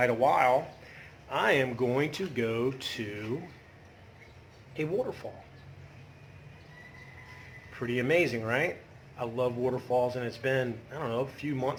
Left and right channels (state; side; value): identical; both; correlation 1.00